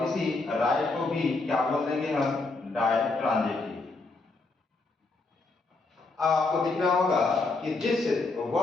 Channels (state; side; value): quieter; right; 3.5 dB